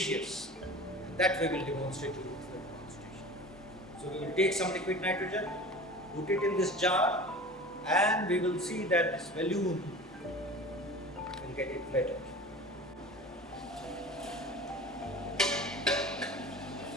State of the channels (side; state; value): both; normal; correlation 0.37